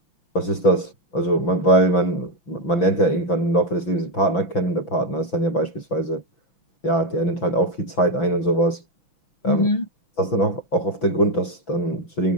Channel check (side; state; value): right; late; 6.0 ms